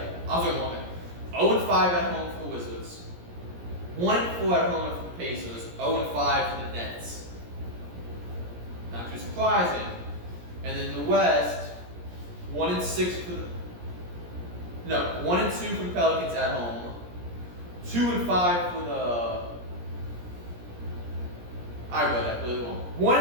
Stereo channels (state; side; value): late; left; 17 ms